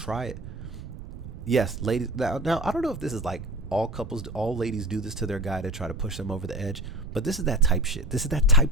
it. Yes, ladies. Now, I don't know if this is like all ladies do this to their guy to try to push them over the edge, but this is that type shit. This is that type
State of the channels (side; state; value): right; noise; rumble, 11 dB below the sound